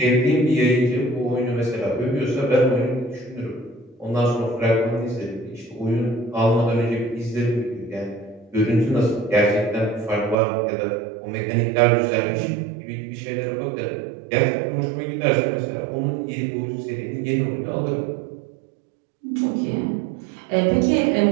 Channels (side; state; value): left; drops out; at 10.4 s